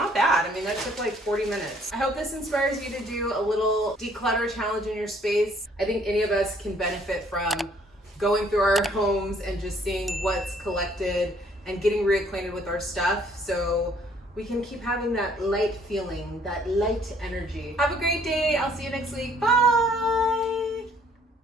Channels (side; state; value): both; normal; correlation 0.62